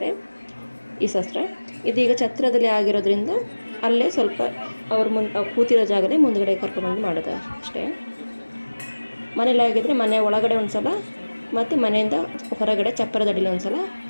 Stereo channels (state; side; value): inverted; both; correlation -1.00